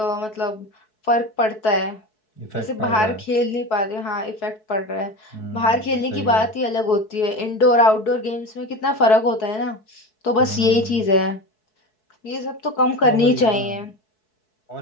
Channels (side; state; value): right; late; 4.6 ms